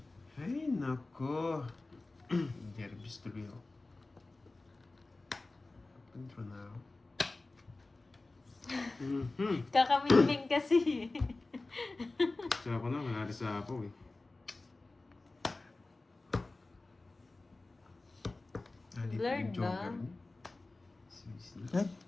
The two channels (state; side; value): quieter; right; 3.2 dB